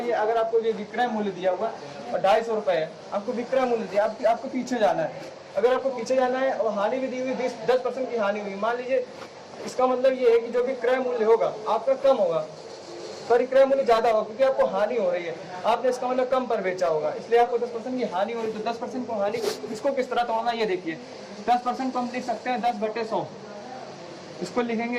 अगर आपको ये विक्रय मूल्य दिया हुआ और 250 रुपये है, आपको विक्रय मूल्य दिया, आपको पीछे जाना है। अगर आपको पीछे जाना है और हानि भी दी हुई 10% की हानि हुई, मान लीजिए, इसका मतलब ये है कि जो भी क्रय मूल्य होगा आपका कम होगा, पर क्रय मूल्य ज्यादा होगा क्योंकि आपको हानि हो रही है, आपने इसका मतलब कम पर बेचा होगा, इसलिए आपको 10% की हानि हो रही है। तो 10% को हानि, इसको किस तरह तोड़ना ये देखिए। 10% को हम लिख सकते हैं 10/100, इसको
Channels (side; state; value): both; identical; correlation 1.00